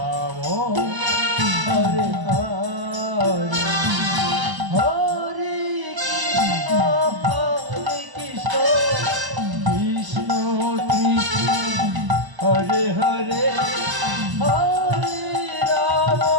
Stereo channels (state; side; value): late; left; 1.0 ms